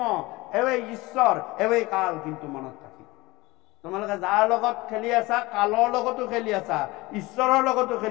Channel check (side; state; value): right; quieter; 21.5 dB